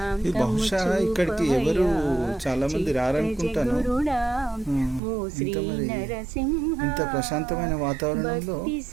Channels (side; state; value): left; drops out; at 5.0 s